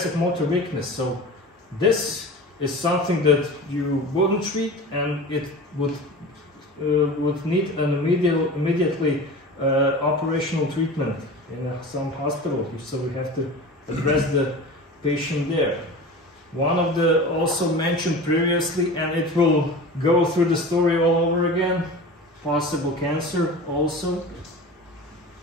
motor weakness. So this is something that you wouldn't treat, and it would need an immediately operational treatment in some hospital. So we have to address the patient there. One of the also mentioned previously, and it will go through the story all over again, possible cancer also,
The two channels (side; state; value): both; normal; correlation 0.34